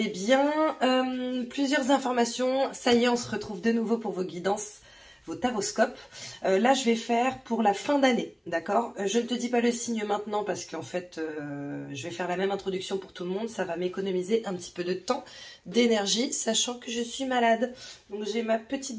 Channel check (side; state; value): both; identical; correlation 1.00